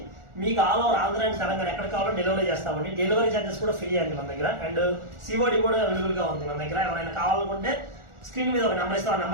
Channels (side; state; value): left; late; 1.4 ms